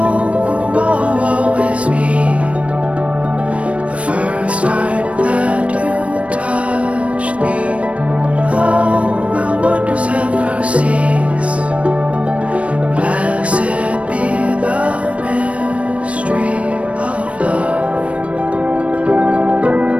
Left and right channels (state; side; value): late; left; 0.063 ms